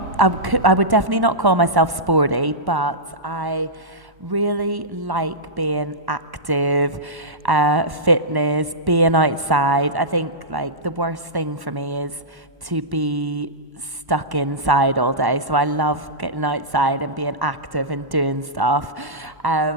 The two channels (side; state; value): left; late; 1.1 ms